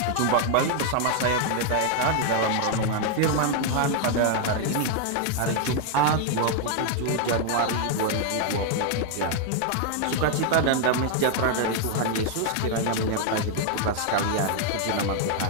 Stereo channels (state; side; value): different; both; correlation 0.00